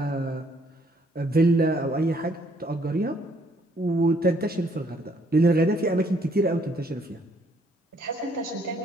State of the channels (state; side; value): normal; both; correlation 0.66